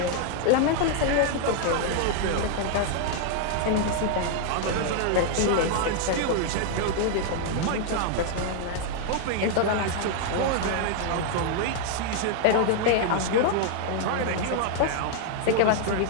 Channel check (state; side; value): different; both; correlation 0.00